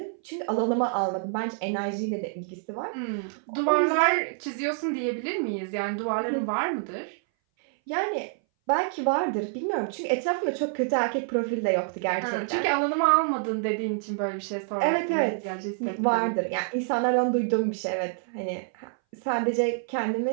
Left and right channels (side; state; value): left; silent; 59 dB below the other